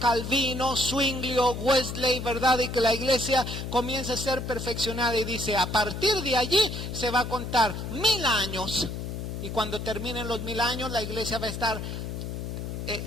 Zwinglio, Wesley, ¿verdad? Y que la iglesia comienza a ser perfeccionada y dice, a partir de allí se va a contar 1000 años. Y cuando terminen los 1000 años, la iglesia va a estar,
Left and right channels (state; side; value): noise; left; hum, 6 dB below the sound